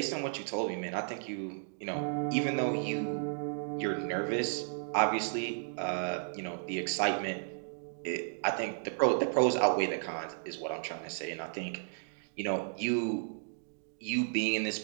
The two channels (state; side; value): silent; left; digital silence